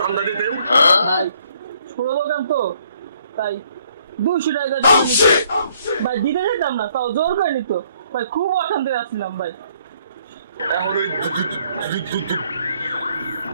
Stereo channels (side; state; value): both; inverted; correlation -0.66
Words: দিতেন? ছোট দোকান তো তাই 200 টাকা জমা নিত ভাই। দিতে যেতাম না, তাও জোর করে নিত ভাই। খুব অশান্তি আসছিলাম ভাই। এখন ওই